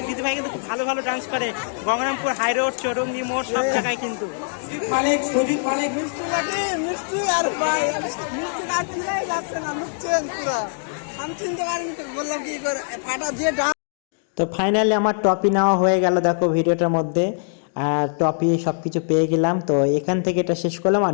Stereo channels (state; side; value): silent; right; 64 dB below the other